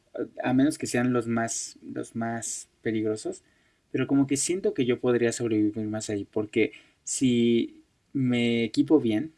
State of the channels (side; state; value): both; identical; correlation 1.00